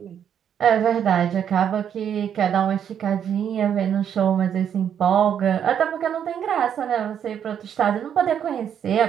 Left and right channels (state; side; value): quieter; left; 8.8 dB